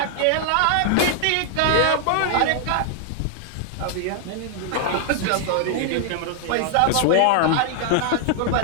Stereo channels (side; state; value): both; different; correlation 0.00